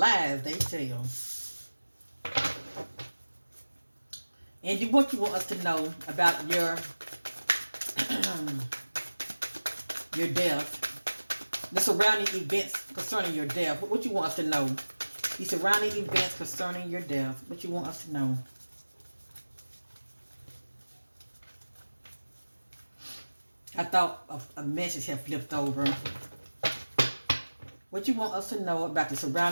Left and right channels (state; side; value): inverted; both; correlation -1.00